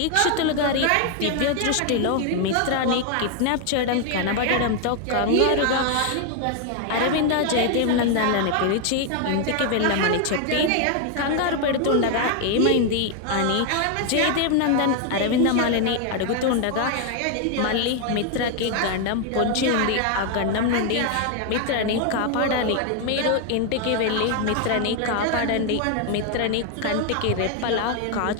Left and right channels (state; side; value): different; both; correlation 0.00